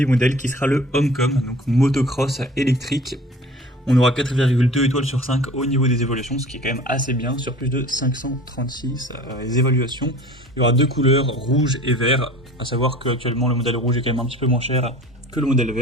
modèle qui sera le Homecom, donc motocross électrique. On aura 4,2 étoiles sur 5 au niveau des évaluations, ce qui est quand même assez bien, sur plus de 536 évaluations. Il y aura deux couleurs, rouge et vert, à savoir qu'actuellement le modèle rouge est quand même un petit peu moins cher que le modèle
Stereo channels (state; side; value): normal; both; correlation 0.43